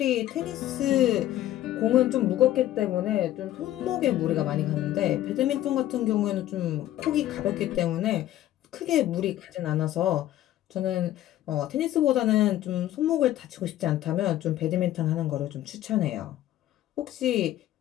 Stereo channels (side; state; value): right; quieter; 13.4 dB